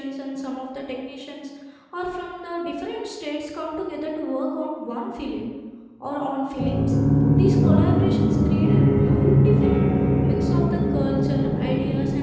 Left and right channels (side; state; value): both; identical; correlation 1.00